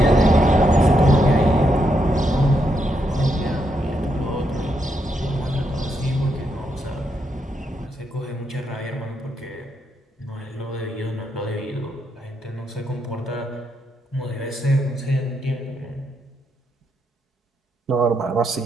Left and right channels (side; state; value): both; normal; correlation 0.80